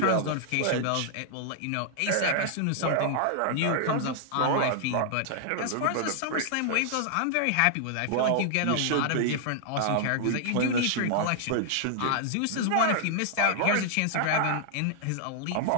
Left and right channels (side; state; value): both; different; correlation -0.01